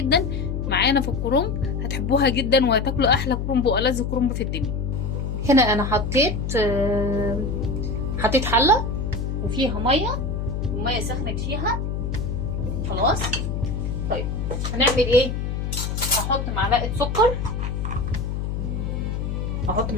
معانا في الكرنب، هتحبوها جدا وهتاكلوا احلى كرنب والذ كرنب في الدنيا. هنا انا حطيت حلة وفيها مية، والمية سخنت فيها خلاص. طيب هنعمل ايه؟ هحط معلقة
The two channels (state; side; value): noise; left; hum, 2 dB below the sound